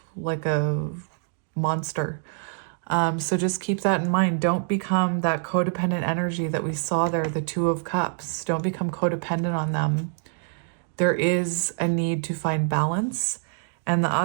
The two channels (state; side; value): silent; left; digital silence